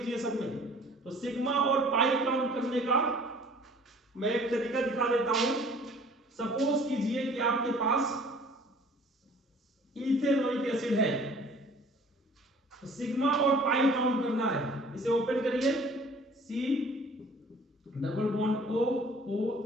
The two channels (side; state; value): both; normal; correlation 0.52